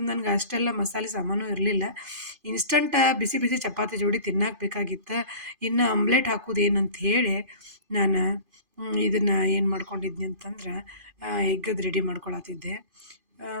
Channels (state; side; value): late; left; 2.5 ms